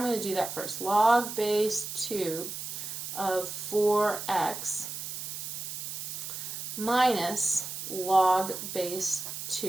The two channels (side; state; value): right; noise; hiss, 6 dB below the sound